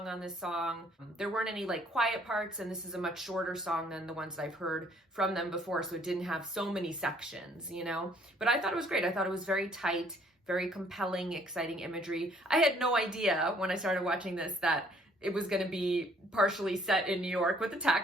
on this song. There weren't any like quiet parts, and this is a much shorter song than the ones that I've heard from them before, so it didn't have so many sections, you know? But I thought it was great. I thought it was very tight, very compelling, exciting imagery. I had no idea when I started watching this that it was going to be partially set in New York with the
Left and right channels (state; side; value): normal; both; correlation 0.61